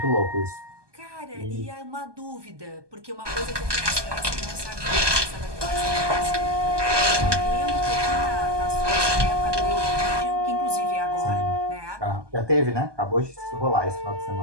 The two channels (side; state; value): left; late; 1.2 ms